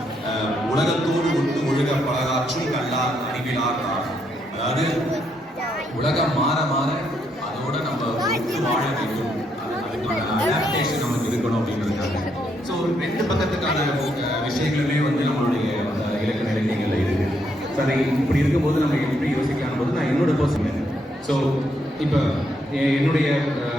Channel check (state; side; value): normal; both; correlation 0.76